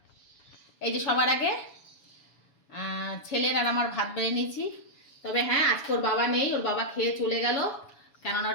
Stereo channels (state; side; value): late; right; 7.1 ms